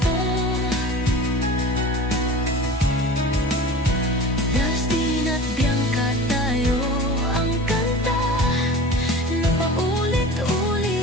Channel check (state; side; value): normal; both; correlation 0.37